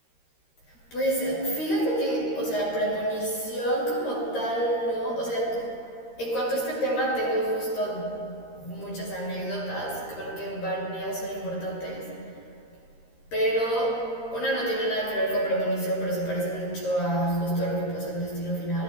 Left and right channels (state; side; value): late; right; 13 ms